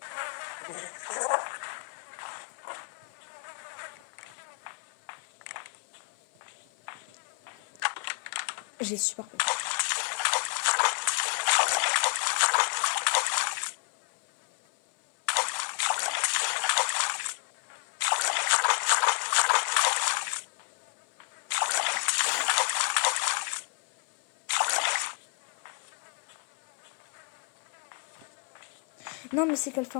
J'ai super peur. Non, mais c'est qu'elle fait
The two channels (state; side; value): quieter; right; 37.5 dB